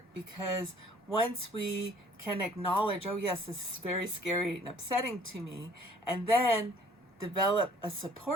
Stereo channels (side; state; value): both; normal; correlation 0.56